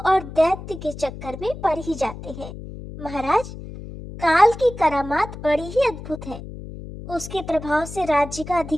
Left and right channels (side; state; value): left; noise; hum, 12 dB below the sound